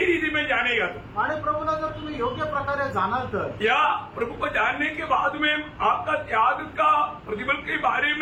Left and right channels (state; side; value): identical; both; correlation 1.00